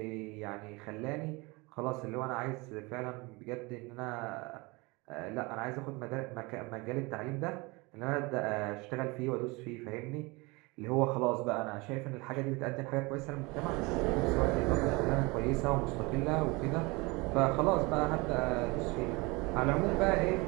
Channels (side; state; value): left; quieter; 25.4 dB